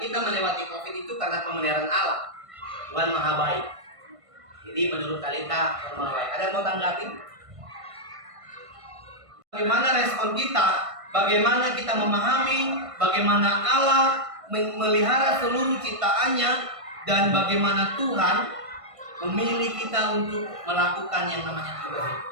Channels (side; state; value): left; late; 1.5 ms